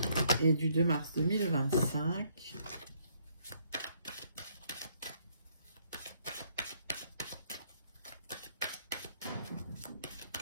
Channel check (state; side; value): inverted; both; correlation -0.68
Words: et du 2 mars 2025.